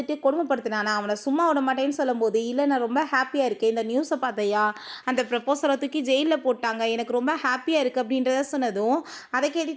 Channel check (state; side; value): identical; both; correlation 1.00